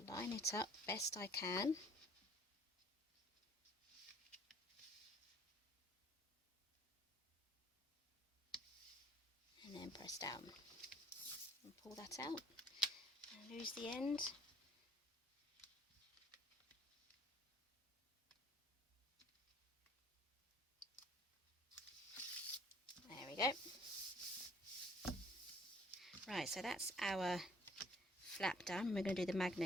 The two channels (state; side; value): normal; both; correlation 0.57